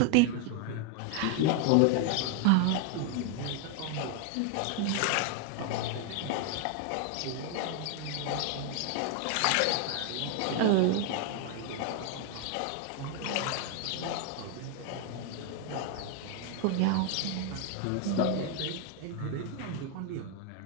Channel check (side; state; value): both; different; correlation 0.01